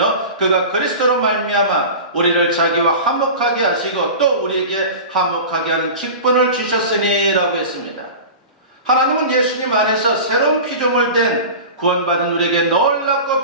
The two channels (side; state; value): both; inverted; correlation -0.32